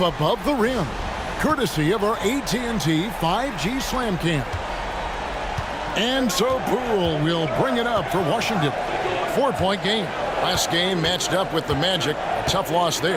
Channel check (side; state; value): both; identical; correlation 1.00